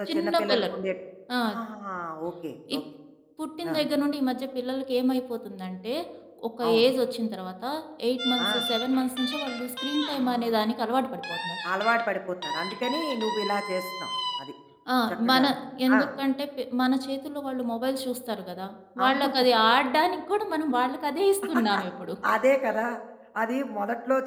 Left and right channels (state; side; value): identical; both; correlation 1.00